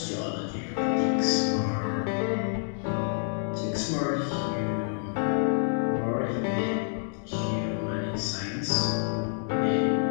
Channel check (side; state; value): right; silent; digital silence